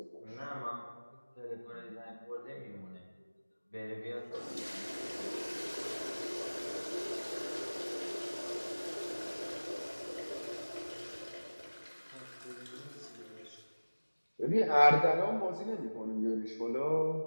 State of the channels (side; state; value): both; inverted; correlation -1.00